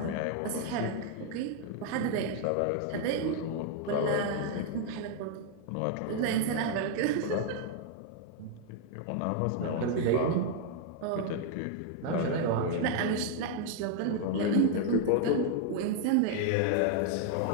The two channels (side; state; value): both; different; correlation 0.00